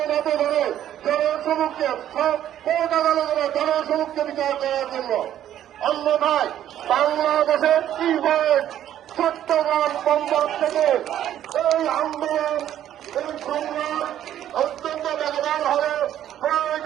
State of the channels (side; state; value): left; quieter; 11.4 dB